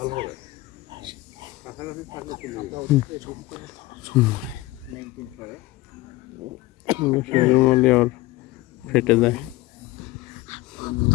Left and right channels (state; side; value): quieter; right; 19.0 dB